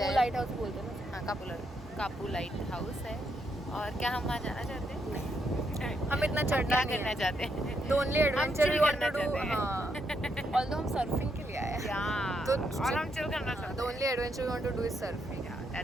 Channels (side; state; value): both; normal; correlation 0.78